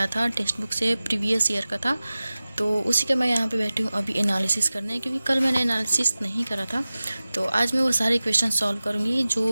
था टेक्स्ट बुक से, प्रीवियस ईयर का था, तो उसी का मैं यहाँ पे बैठी हूँ अभी एनालिसिस करने, क्योंकि कल मैंने एनालिसिस नहीं करा था। तो आज मैं वो सारे क्वेश्चन सॉल्व करूँगी जो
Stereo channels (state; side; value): inverted; both; correlation -0.97